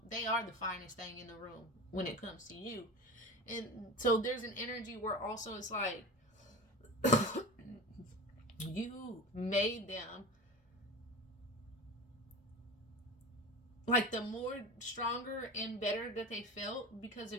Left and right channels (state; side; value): normal; both; correlation 0.31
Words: They are the finest thing in the room when it comes to you. And so there's an energy where also it's like you made them, like, the more stronger and better that they felt because